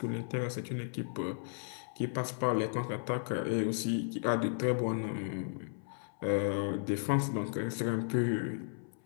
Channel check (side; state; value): right; silent; 55 dB below the other